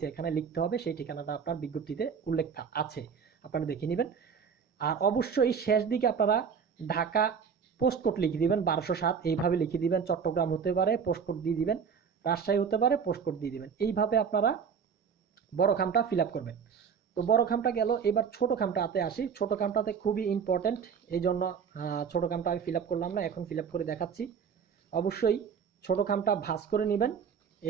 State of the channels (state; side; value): quieter; left; 6.7 dB